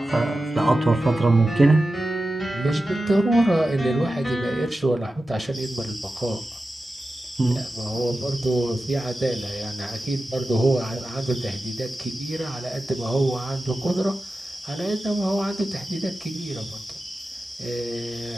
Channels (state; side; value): normal; both; correlation 0.93